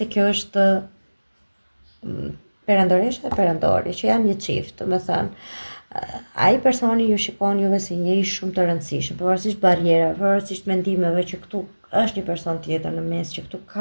kjo është perandoresha dhe perandori, që janë një çift, domethënë ai personi ju shikon juve si njëri shumë të rëndësishëm, pavarësisht barrierave, pavarësisht mendimeve që këtu është një person tjetër në mes, që këtu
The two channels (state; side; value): inverted; both; correlation -1.00